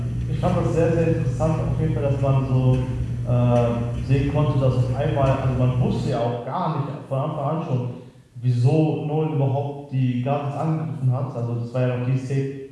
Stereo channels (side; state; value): both; identical; correlation 1.00